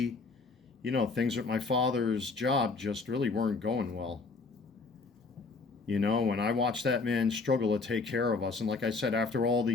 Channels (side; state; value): right; quieter; 4.1 dB